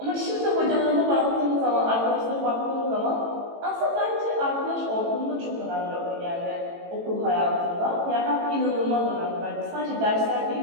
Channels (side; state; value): left; late; 18 ms